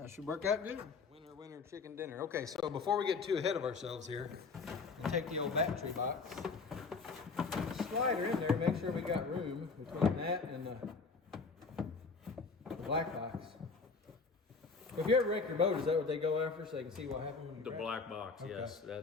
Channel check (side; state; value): right; quieter; 4.6 dB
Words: should work out good. Winner, chicken dinner. Okay, so before we get too ahead of ourselves here, we'll take the old battery box, slide her in there, make sure we got room between that and the black box. If you ever wreck your boat, is that what they go after so they can see what happened when you The crash? black box, Okay. yes.